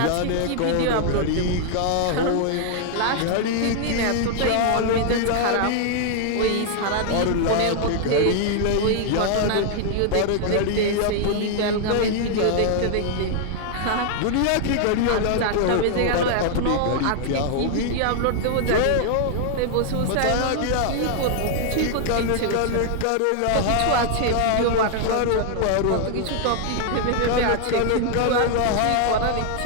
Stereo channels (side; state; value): both; different; correlation -0.01